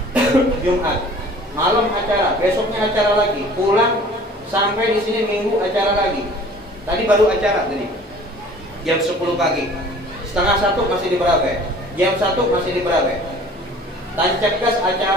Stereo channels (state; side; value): normal; both; correlation 0.48